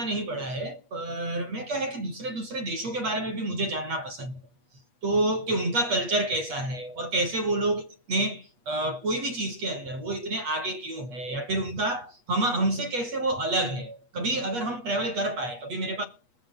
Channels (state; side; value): late; left; 8.3 ms